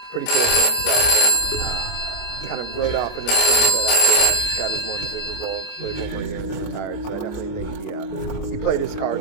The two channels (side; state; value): right; late; 26 ms